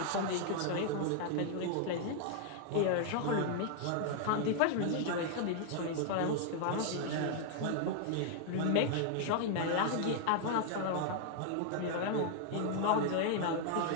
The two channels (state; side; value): different; both; correlation 0.00